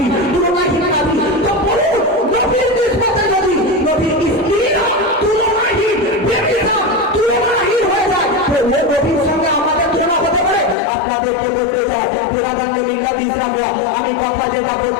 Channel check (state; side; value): drops out; right; at 10.8 s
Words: বিরাদান্য মিল্লাত ইসলামিয়া, আমি কথা যেটা